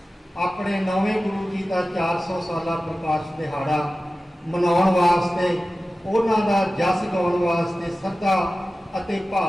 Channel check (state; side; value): normal; both; correlation 0.95